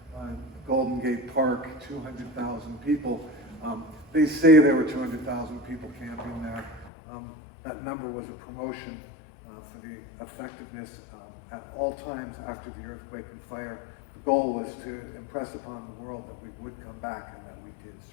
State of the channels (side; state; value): right; drops out; at 6.9 s